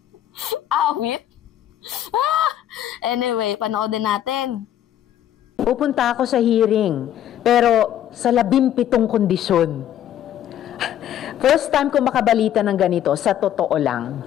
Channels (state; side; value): quieter; right; 11.2 dB